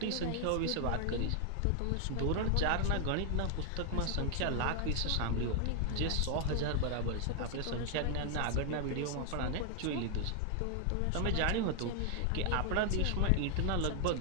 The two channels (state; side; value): different; both; correlation 0.00